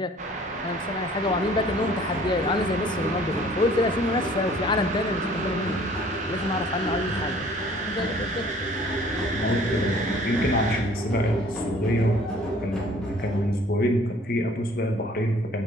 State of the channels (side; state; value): both; normal; correlation 0.54